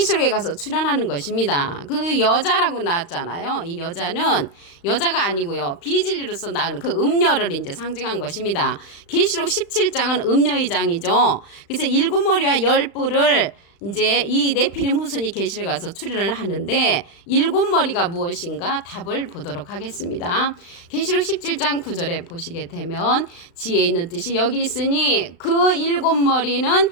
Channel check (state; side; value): late; right; 35 ms